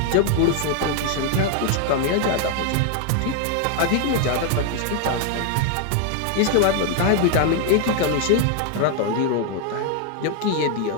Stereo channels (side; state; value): both; different; correlation 0.01